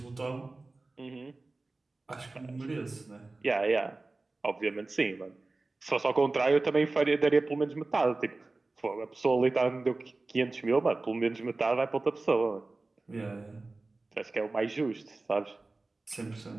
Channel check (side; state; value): left; quieter; 3.3 dB